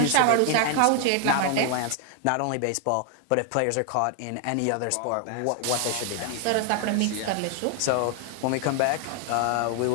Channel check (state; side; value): different; both; correlation 0.00